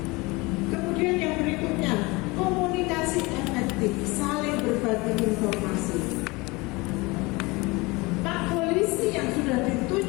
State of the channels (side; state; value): right; quieter; 24.2 dB